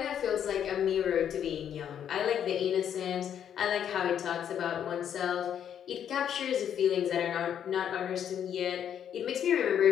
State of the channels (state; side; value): quieter; right; 9.2 dB